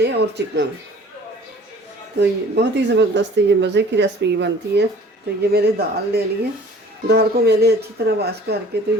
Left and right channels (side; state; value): both; normal; correlation 0.49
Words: और चिकन। तो ये बहुत ही ज़बरदस्त ये मज़े की रेसिपी बनती है। तो ये मैंने दाल ले ली है। दाल को मैंने अच्छी तरह वॉश करके तो